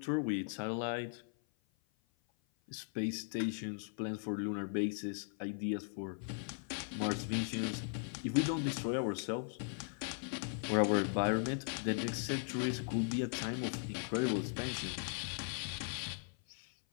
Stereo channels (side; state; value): right; silent; 52 dB below the other